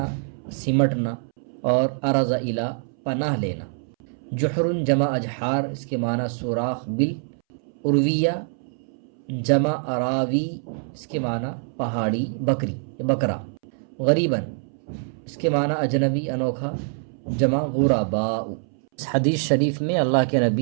سمٹنا، اور ارز الی، پناہ لینا۔ جحر جمع اجحار، اس کے معنی سوراخ بل۔ ارویہ جمع اراوی، اس کے معنی پہاڑی بکری یا بکرا۔ غریباً، اس کے معنی اجنبی انوکھا، جمع غرباء۔ اس حدیث شریف میں اللہ کے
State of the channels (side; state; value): left; silent; 62 dB below the other